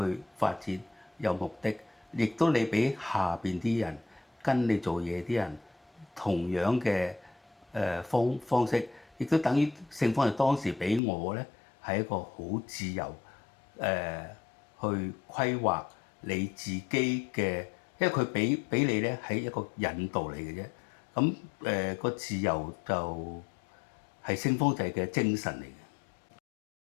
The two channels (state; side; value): drops out; right; at 11.0 s